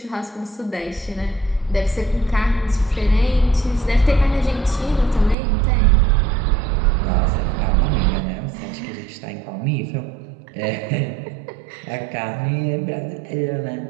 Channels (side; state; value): left; drops out; at 5.4 s